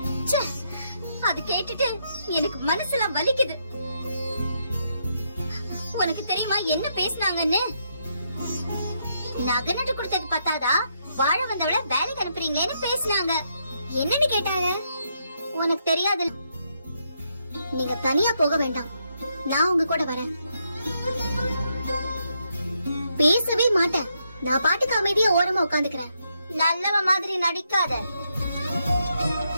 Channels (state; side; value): inverted; both; correlation -0.78